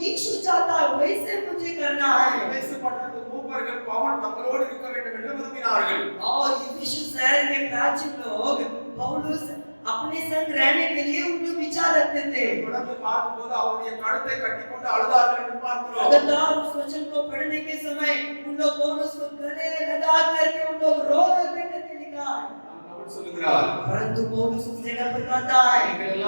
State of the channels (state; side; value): inverted; both; correlation -1.00